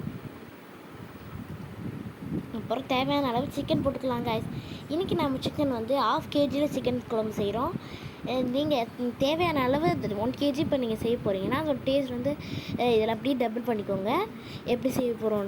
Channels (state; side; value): identical; both; correlation 1.00